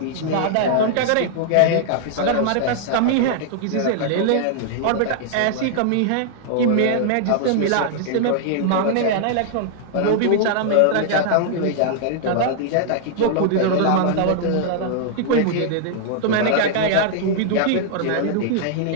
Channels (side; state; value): both; different; correlation -0.01